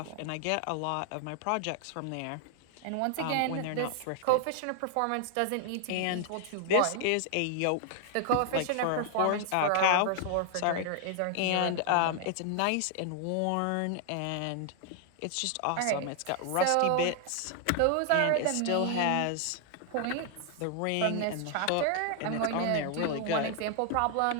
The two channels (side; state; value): both; different; correlation 0.00